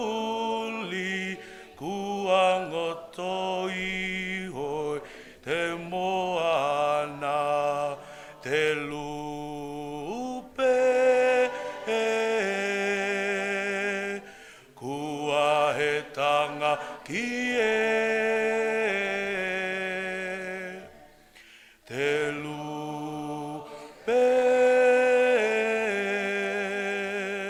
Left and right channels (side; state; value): both; identical; correlation 1.00